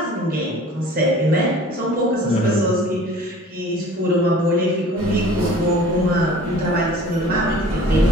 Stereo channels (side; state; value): both; normal; correlation 0.46